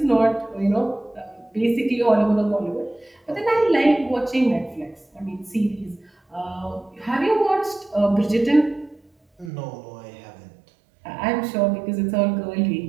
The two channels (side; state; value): left; drops out; at 9.5 s